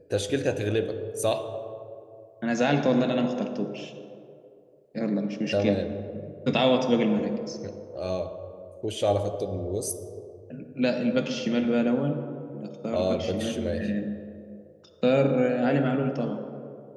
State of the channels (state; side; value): identical; both; correlation 1.00